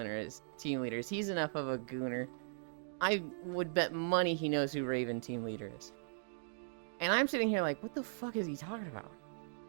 is. He's enough of a gooner. I would bet money he knows who Raven team leader is. And I'm sitting here like, what the fuck is he talking about?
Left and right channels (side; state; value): left; silent; digital silence